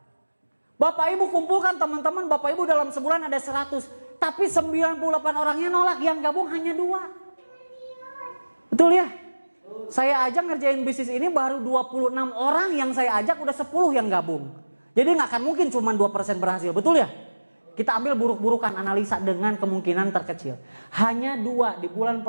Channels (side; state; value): both; inverted; correlation -1.00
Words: Bapak Ibu kumpulkan teman-teman Bapak Ibu dalam sebulan ada 100, tapi 98 orangnya nolak, yang gabung hanya 2. Betul ya? Saya aja ngerjain bisnis ini baru 26 orang yang saya ajak, udah 10 yang gabung. Jadi nggak akan mungkin cuma 2% berhasil, betul ya? Kita ambil buruk-burukan, analisa dengan kemungkinan terkecil. Hanya 2, di bulan